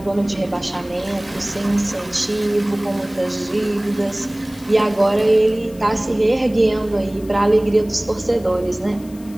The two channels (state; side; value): noise; left; hiss, 24 dB below the sound